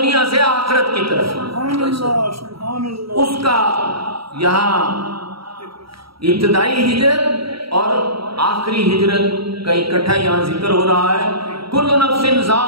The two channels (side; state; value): left; late; 0.75 ms